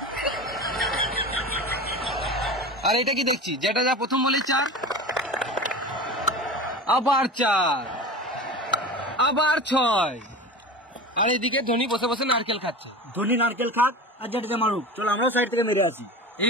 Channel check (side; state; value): both; normal; correlation 0.31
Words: আর এটা কি দেখছি, যেটা যা প্রথম বলি 4, আবার 4, আবার 6। আর এদিকে ধোনি বসে বসে নারকেল খাচ্ছে। ধোনি নারকেল খাক আর জাডেজা মারুক, চলো আমরা সাইড থেকে মেরে আসি।